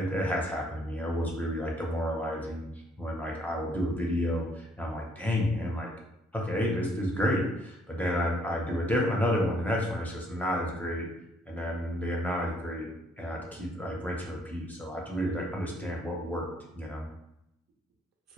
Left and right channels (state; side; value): normal; both; correlation 0.66